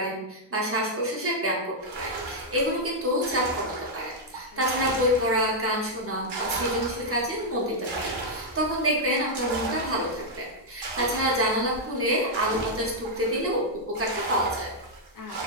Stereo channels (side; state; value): both; normal; correlation -0.03